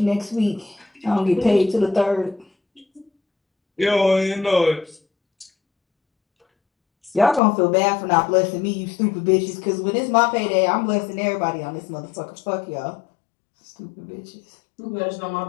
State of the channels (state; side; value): drops out; right; at 7.4 s